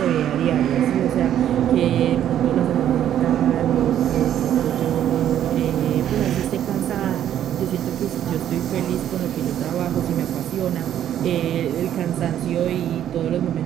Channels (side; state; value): left; quieter; 10.8 dB